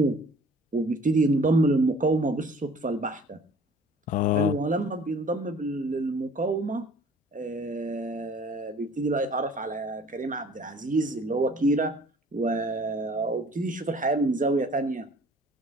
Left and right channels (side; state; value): both; normal; correlation 0.51